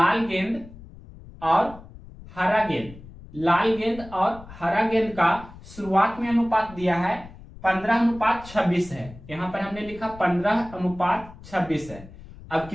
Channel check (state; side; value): noise; left; rumble, 18 dB below the sound